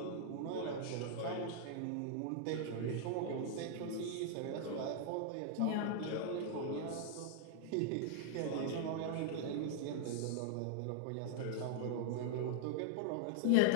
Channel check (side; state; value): both; different; correlation -0.01